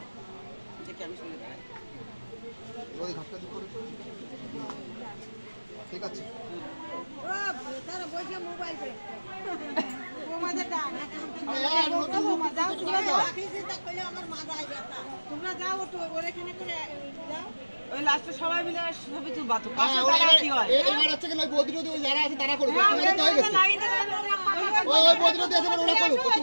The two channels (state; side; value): inverted; both; correlation -1.00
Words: আমি শুনে দাঁড়াই ঘাটটা দিতে ঠিক আছে তোমরা যাও ওখানে করে যাও ওই লাস্টে সবাই মিলে ছবি তুলবা তো কি হয় এবার হচ্ছে কিনা বদ্রুদি ওই যারা আছে তারা করবে তোমাদের তো হয়ে গেছে ওই বদ্রুদি আছে ওরা করুক